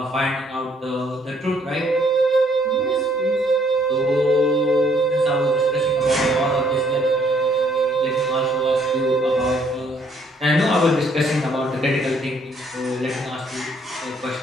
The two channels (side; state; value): both; normal; correlation 0.66